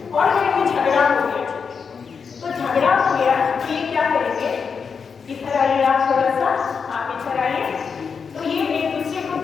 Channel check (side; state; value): right; quieter; 5.9 dB